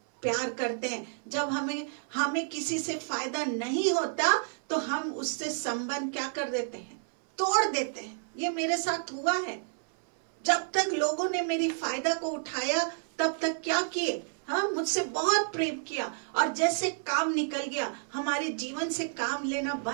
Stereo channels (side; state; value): left; silent; 58 dB below the other